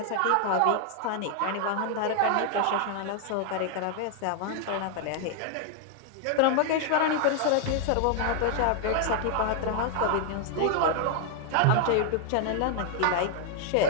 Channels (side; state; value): both; different; correlation 0.00